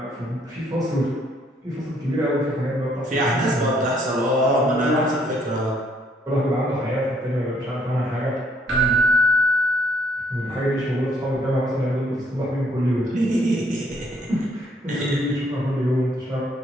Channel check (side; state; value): both; normal; correlation 0.66